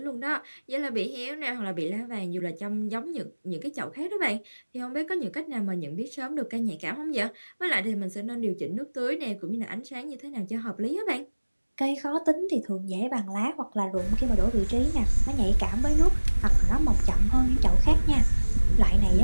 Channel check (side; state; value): both; inverted; correlation -1.00